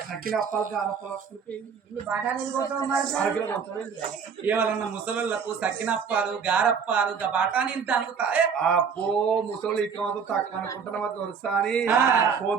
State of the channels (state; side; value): quieter; left; 6.3 dB